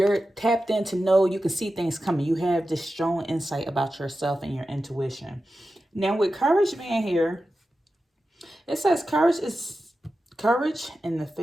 tapped in to know you can see things coming. You have this strong insight about yourself and your intuition. Now, with courage being here, it says courage is courage in the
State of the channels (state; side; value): normal; both; correlation 0.92